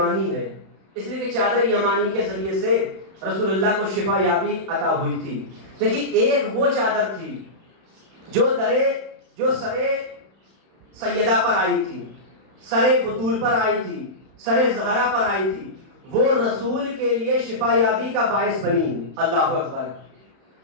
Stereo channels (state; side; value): late; left; 31 ms